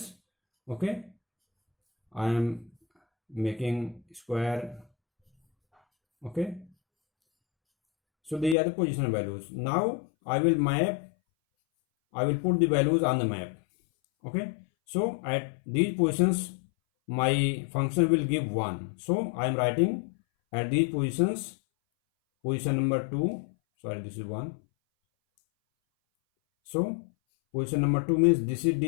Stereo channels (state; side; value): drops out; right; at 8.6 s